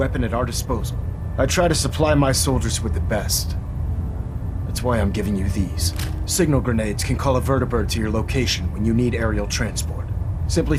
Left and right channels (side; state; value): both; identical; correlation 1.00